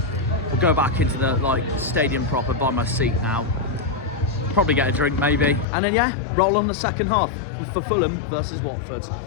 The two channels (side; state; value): right; drops out; at 5.7 s